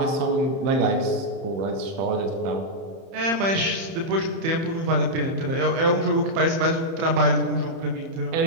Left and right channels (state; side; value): late; left; 30 ms